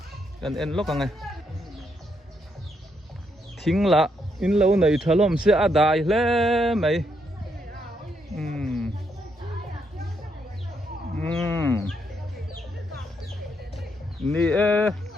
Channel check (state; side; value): normal; both; correlation 0.77